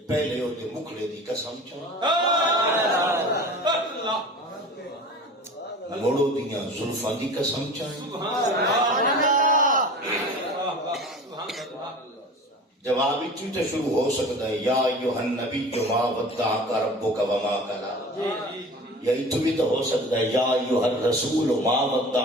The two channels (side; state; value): both; normal; correlation 0.38